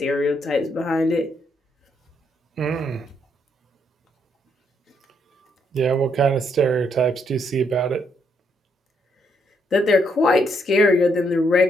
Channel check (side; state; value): both; normal; correlation 0.74